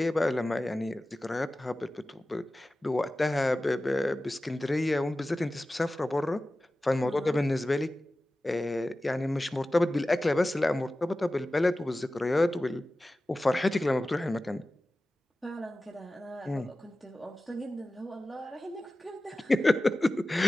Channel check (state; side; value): normal; both; correlation 0.96